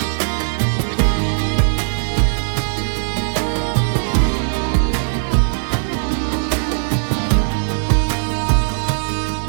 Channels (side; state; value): left; silent; digital silence